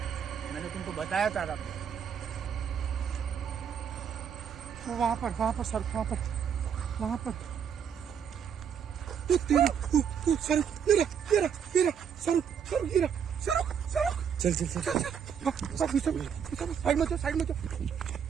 मैंने तुमको बताया था रब। वो वहाँ पर सर, वहाँ पर सर साइड में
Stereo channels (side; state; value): left; quieter; 7.7 dB